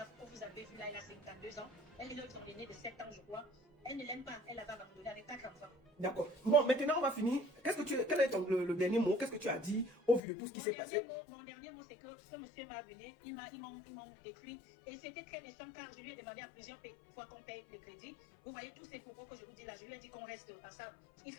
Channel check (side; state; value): right; drops out; at 10.2 s